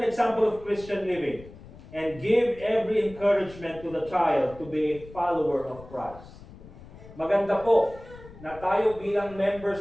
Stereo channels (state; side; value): noise; left; rumble, 18 dB below the sound